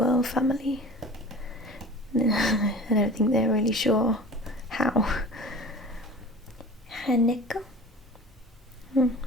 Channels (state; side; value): normal; both; correlation 0.40